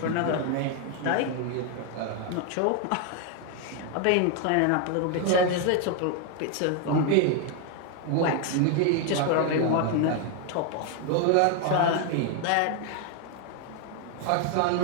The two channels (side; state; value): both; different; correlation 0.01